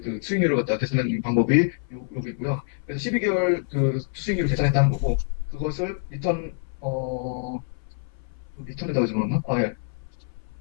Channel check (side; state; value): right; silent; 61 dB below the other